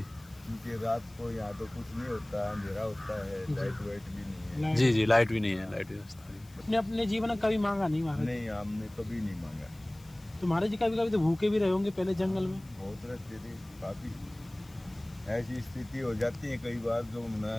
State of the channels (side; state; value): left; noise; hiss, 26 dB below the sound